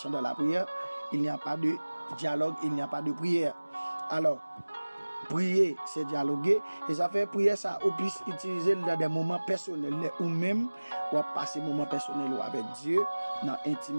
dans la prière, il n'y a pas de dialogue, il n'y a pas de prière. Alors, prier, c'est dialoguer. Et ça fait prier ça ou plus utiliser dans des moments personnels ou même ou passer moments personnels avec Dieu, dans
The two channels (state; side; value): inverted; both; correlation -1.00